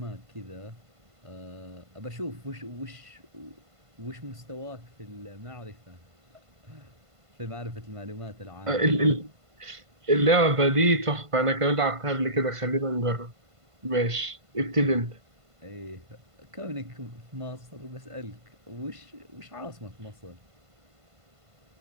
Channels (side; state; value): left; late; 1.5 ms